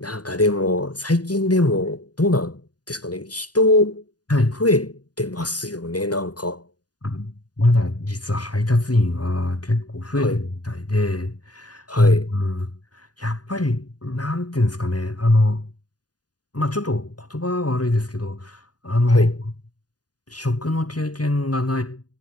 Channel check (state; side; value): late; right; 0.69 ms